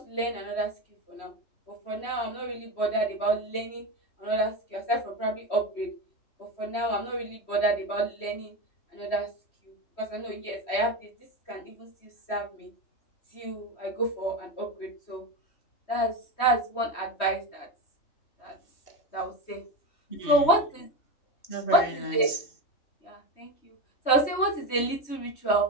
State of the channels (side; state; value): right; late; 3.1 ms